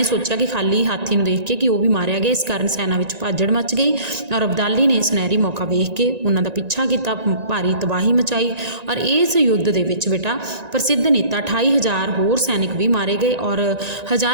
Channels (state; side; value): late; left; 1.9 ms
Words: ਸੋਚਿਆ ਕਿ ਖਾਲੀ ਹਾਥੀ ਨੂੰ ਦੇਖ ਕੇ ਕਿ ਉਹ ਵੀ ਮਾਰਿਆ ਗਿਆ। ਇਸ ਕਾਰਨ ਸੈਨਾ ਵਿੱਚ ਭਾਜੜ ਮਚ ਗਈ ਔਰ ਅਬਦਾਲੀ ਨੇ ਸੁਨਹਿਰੀ ਮੌਕਾ ਵੇਖ ਕੇ ਉਹਨਾਂ ਦਾ ਪਿੱਛਾ ਕੀਤਾ, ਭਾਰੀ ਤਬਾਹੀ ਮਚਾਈ ਔਰ ਇਸ ਯੁੱਧ ਦੇ ਵਿੱਚ ਬੇਟਾ ਪ੍ਰਸਿੱਧ ਨੇਤਾ 28,000 ਹੋਰ ਸੈਨਿਕ ਵੀ ਮਾਰੇ ਗਏ ਔਰ